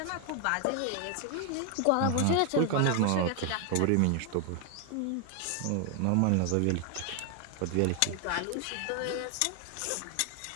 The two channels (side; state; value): both; different; correlation 0.00